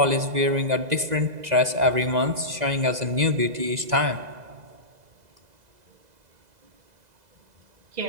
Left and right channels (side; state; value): left; late; 2.0 ms